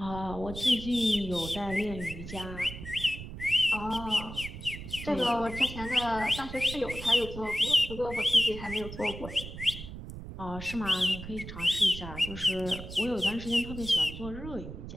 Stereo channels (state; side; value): noise; right; rumble, 10 dB below the sound